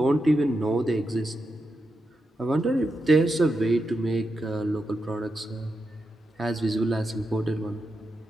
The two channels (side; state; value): both; normal; correlation 0.87